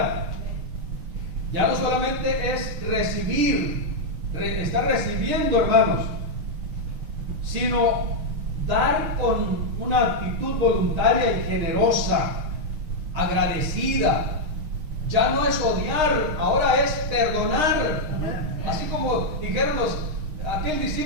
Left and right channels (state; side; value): late; left; 6.5 ms